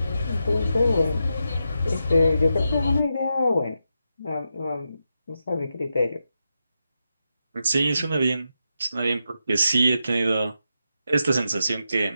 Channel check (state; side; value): inverted; both; correlation -0.86